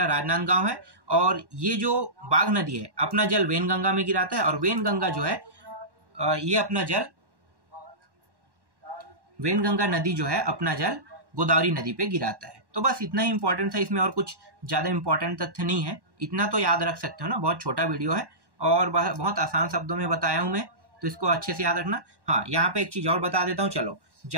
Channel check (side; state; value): left; late; 1.1 ms